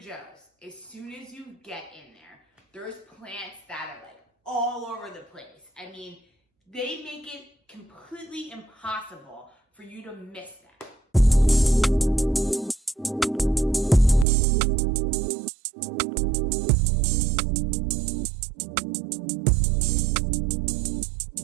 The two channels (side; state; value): left; drops out; at 14.2 s